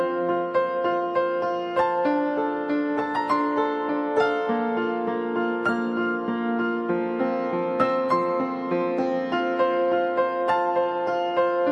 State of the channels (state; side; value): identical; both; correlation 1.00